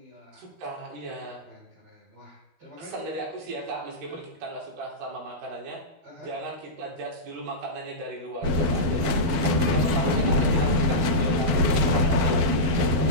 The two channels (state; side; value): late; left; 12 ms